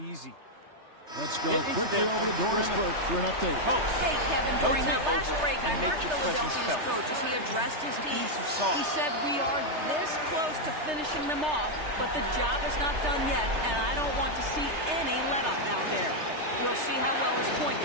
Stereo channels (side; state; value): left; late; 3.3 ms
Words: Let's go quickly over to Doris Burke for an update. Hey, Kevin, during that last break, I heard Philadelphia's coach as he addressed his team. He said, we are this close to finishing them off, but the job is not done yet, and I don't want to see any let-up out there. We'll see how well his point